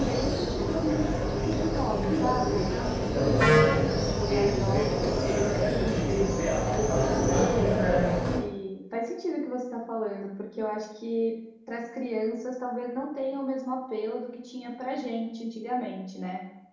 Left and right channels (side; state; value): both; identical; correlation 1.00